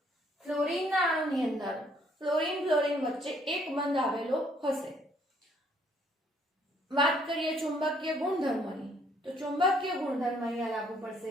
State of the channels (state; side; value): normal; both; correlation 0.65